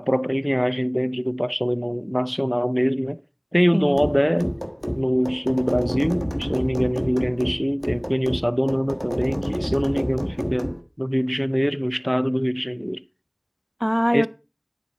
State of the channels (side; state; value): both; identical; correlation 1.00